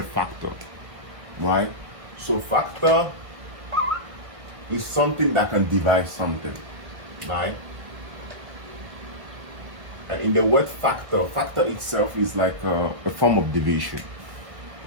factor, right? So factor is something that can divide something, right? And in the word factor itself is like a form of division,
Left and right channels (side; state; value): left; late; 1.5 ms